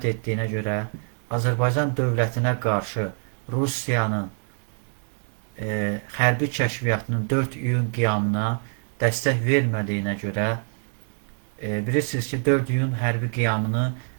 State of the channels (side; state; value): left; silent; 62 dB below the other